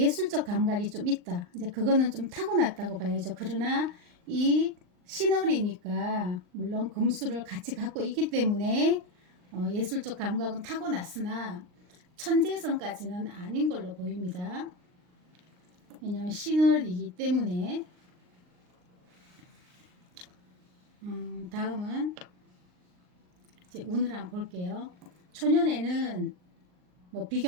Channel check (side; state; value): left; late; 39 ms